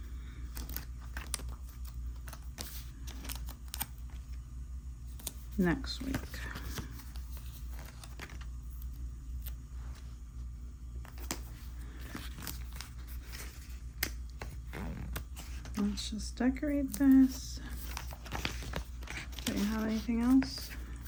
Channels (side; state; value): both; identical; correlation 1.00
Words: next week. Let's just decorate this. Do you have anything else?